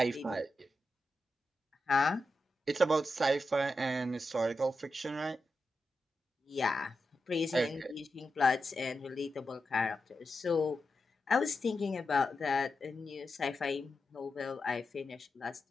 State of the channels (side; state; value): both; normal; correlation 0.88